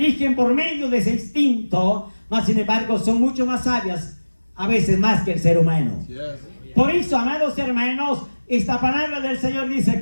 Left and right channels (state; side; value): inverted; both; correlation -1.00